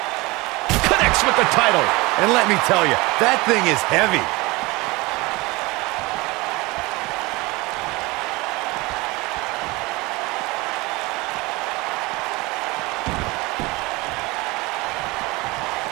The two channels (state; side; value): quieter; left; 23.1 dB